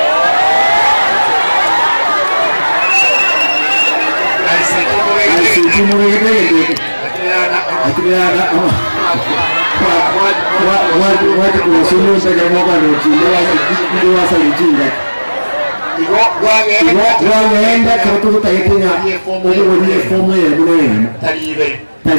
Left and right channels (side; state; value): both; inverted; correlation -1.00